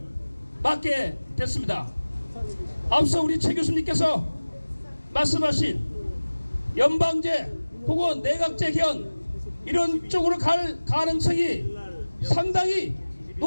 맞게 됐습니다. 앞서 우리 최 교수님께서 말씀하신 연방제 혹은 내각제 개헌 이런 쪽으로 갈 가능성이 상당히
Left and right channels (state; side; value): inverted; both; correlation -1.00